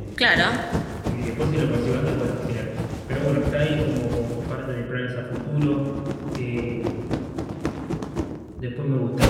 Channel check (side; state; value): both; identical; correlation 1.00